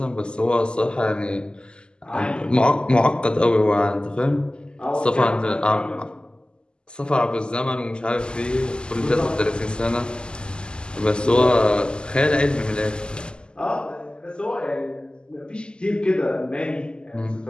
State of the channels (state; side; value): late; right; 0.048 ms